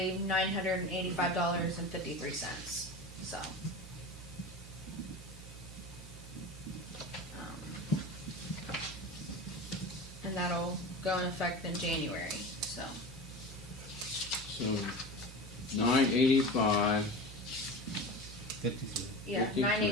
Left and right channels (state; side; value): normal; both; correlation 0.31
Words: $985.53, so. And that'll go in effect in January, so. So 985, 53. Yeah,